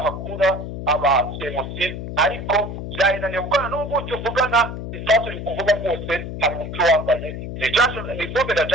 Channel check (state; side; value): noise; left; hum, 7 dB below the sound